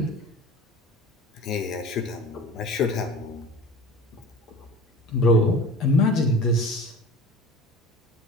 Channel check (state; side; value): normal; both; correlation 0.38